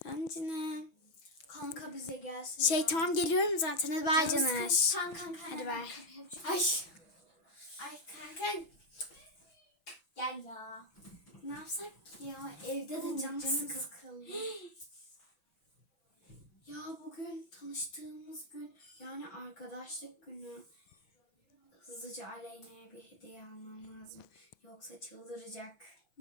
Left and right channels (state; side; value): late; right; 6.0 ms